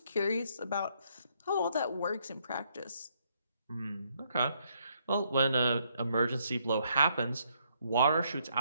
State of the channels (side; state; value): both; inverted; correlation -0.72